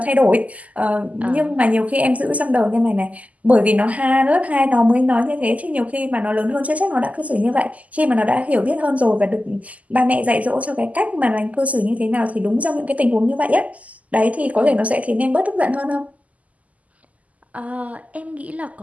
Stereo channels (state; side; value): late; left; 0.073 ms